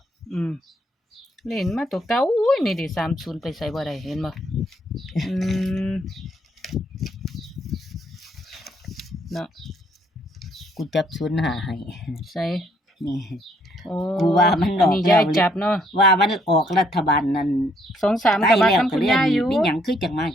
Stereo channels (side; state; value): both; normal; correlation 0.68